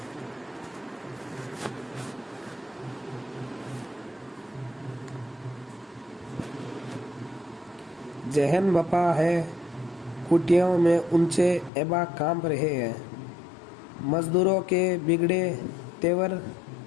जहन बपा है कुटियों में ऊंचे एबा कांप रहे हैं। मजदूरों के बिगड़े तेवर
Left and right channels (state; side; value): drops out; right; at 11.7 s